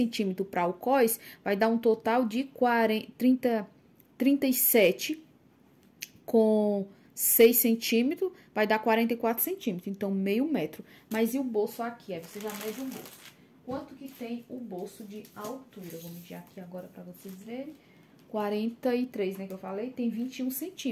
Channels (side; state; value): both; identical; correlation 1.00